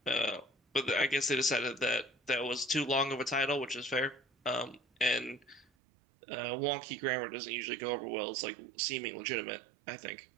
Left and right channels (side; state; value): left; drops out; at 5.7 s